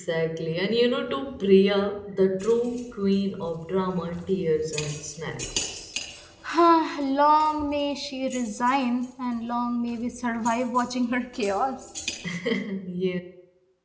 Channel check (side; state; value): both; identical; correlation 1.00